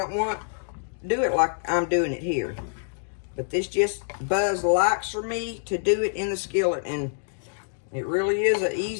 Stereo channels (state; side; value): silent; right; digital silence